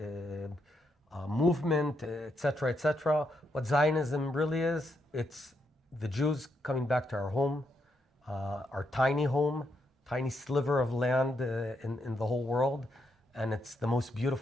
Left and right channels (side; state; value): both; normal; correlation 0.80